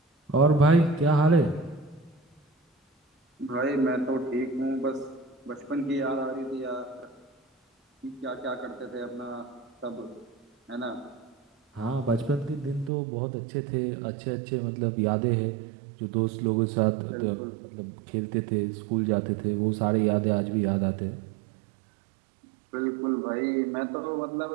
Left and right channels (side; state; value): left; drops out; at 12.9 s